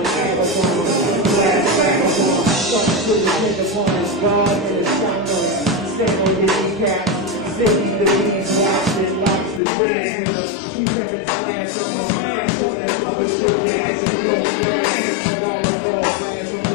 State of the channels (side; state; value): right; drops out; at 9.6 s